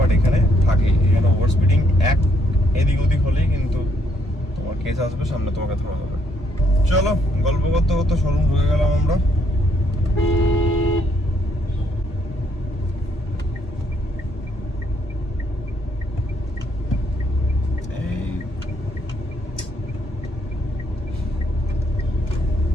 এখানে থাকে, এখানে ওভার স্পিডিং এক এদিক ওদিক হলেই কিন্তু তোমার কেস আসবে, সামনে তোমাকে ধরা হবে। চলো গল্প করতে করতে শোরুম ঢুকে গেলাম আমরা।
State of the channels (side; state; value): both; normal; correlation 0.70